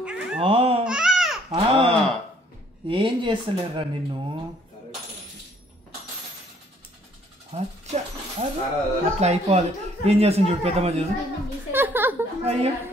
ఏం చేస్తలేరా నిన్ను? అట్లా అయిపోవాలి. ఏం చేస్తుంది చూడు పెద్దమ్మ చూడు. అయ్యో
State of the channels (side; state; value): both; normal; correlation 0.62